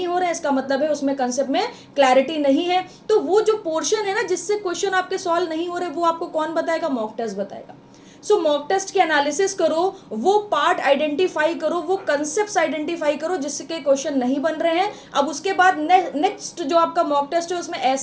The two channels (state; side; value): identical; both; correlation 1.00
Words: हो रहे हैं, इसका मतलब है उसमें कंसेप्ट में क्लैरिटी नहीं है। तो वो जो पोर्शन है ना जिससे क्वेश्चन आपके सॉल्व नहीं हो रहे, वो आपको कौन बताएगा? मॉक टेस्ट बताएगा। सो मॉक टेस्ट के एनालिसिस करो, वो पार्ट आइडेंटिफाई करो, वो कंसेप्ट आइडेंटिफाई करो जिसके क्वेश्चन नहीं बन रहे हैं। अब उसके बाद नेक्स्ट जो आपका मॉक टेस्ट है उसमें